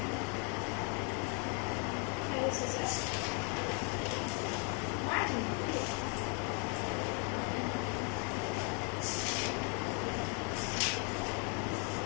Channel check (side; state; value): right; quieter; 36.2 dB